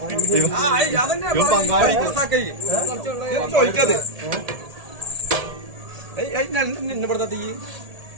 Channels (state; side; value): late; left; 1.7 ms